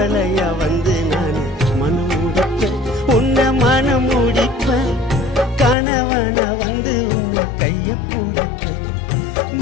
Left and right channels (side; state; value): right; drops out; at 5.8 s